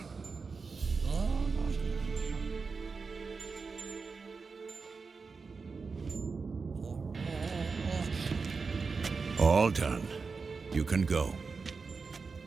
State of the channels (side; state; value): left; quieter; 4.7 dB